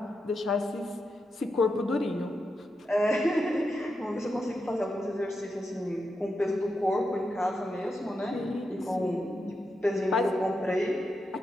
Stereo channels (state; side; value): normal; both; correlation 0.86